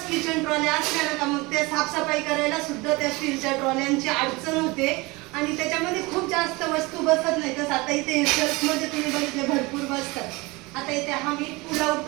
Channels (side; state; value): left; quieter; 23.9 dB